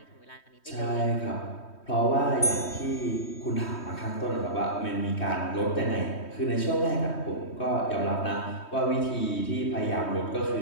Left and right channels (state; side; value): late; right; 3.2 ms